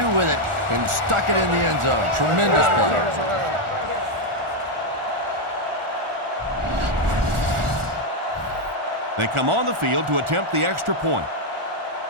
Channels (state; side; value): late; left; 1.4 ms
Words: with it and stuck it in the end zone. Tremendous play. They come on the field to attempt the extra point.